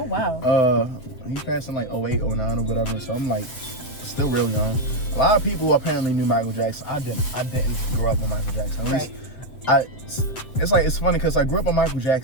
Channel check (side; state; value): right; late; 7.7 ms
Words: wow. He passed in like 08, 09 or whatever. So I'm like, still real young. A lot of people apparently knew Michael Jackson. I didn't grow up with Michael Jackson. At least, it's funny because I grew up with Michael